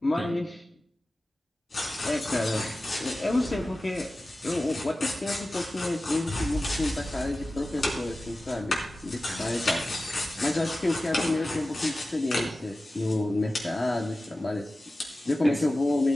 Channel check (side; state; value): both; normal; correlation 0.95